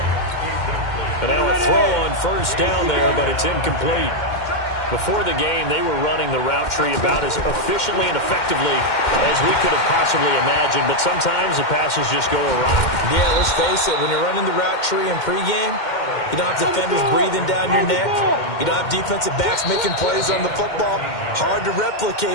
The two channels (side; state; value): right; late; 2.1 ms